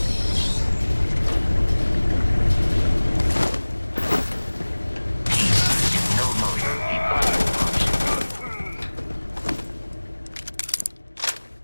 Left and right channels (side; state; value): both; inverted; correlation -1.00